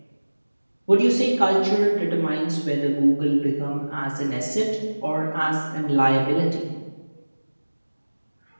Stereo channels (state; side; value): inverted; both; correlation -1.00